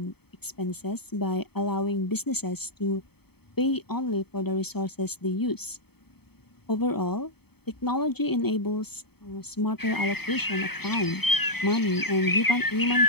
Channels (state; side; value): late; right; 0.97 ms